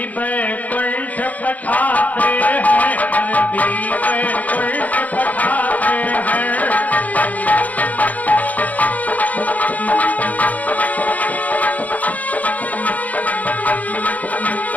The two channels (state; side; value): late; right; 0.076 ms